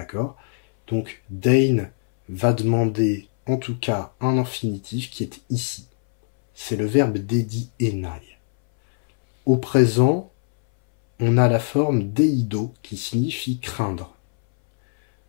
Donc dein va demander en tout cas un infinitif qui est ici. C'est le verbe dedi enai. Au présent, on a la forme deido qui signifie craindre.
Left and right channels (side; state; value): right; silent; 62 dB below the other